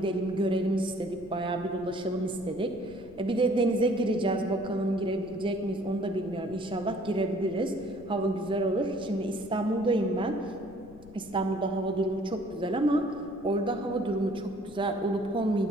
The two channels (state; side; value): noise; left; rumble, 21 dB below the sound